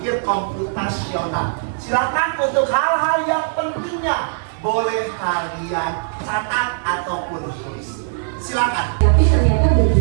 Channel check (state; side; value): silent; left; 57 dB below the other